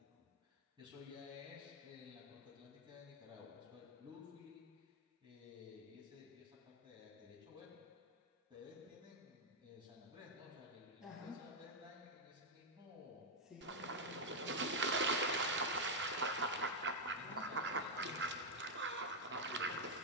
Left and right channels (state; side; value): normal; both; correlation -0.01